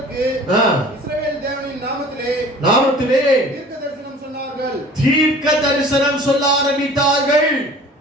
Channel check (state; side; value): normal; both; correlation 0.46